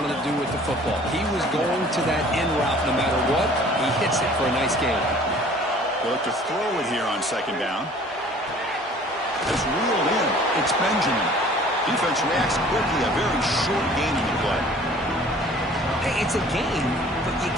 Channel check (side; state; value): both; normal; correlation 0.51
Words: to do with the football. He was going to that end route no matter what. He hits it for a nice gain. They'll look to throw it here on second down. It's reeled in. It's Benjamin. Defense reacts quickly. A very short gain in the play. Hey, it's a gain, but you